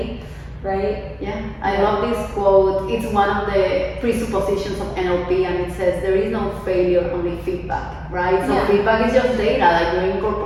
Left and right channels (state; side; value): identical; both; correlation 1.00